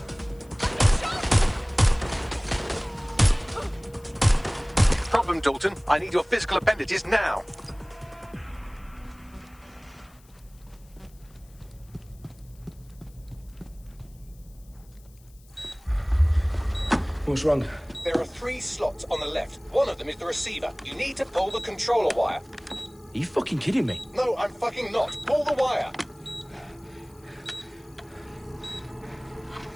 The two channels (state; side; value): noise; left; hiss, 29 dB below the sound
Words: Problem, Dalton. I need your physical appendages now. What's wrong? There are 3 slots on the left. One of them is the receiver. You need to pull the controller wire. Are you fucking kidding me? No, I'm fucking not. Pull the wire.